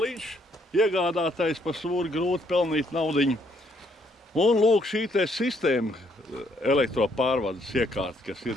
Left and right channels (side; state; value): both; normal; correlation 0.69